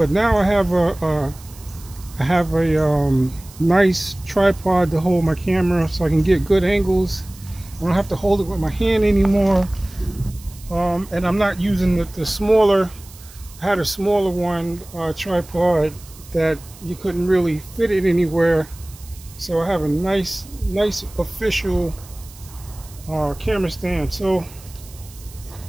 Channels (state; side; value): noise; right; hiss, 21 dB below the sound